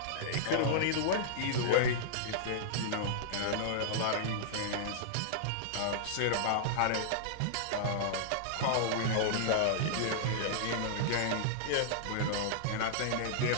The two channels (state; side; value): different; both; correlation -0.02